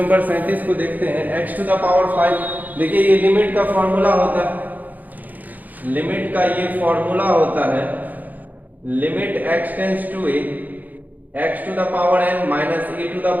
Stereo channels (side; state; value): left; late; 0.082 ms